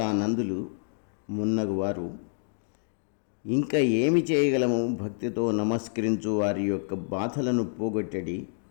మున్నగువారు ఇంకా ఏమి చేయగలము, భక్తితో నమస్కరించు వారి యొక్క బాధలను పోగొట్టడి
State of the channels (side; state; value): right; silent; digital silence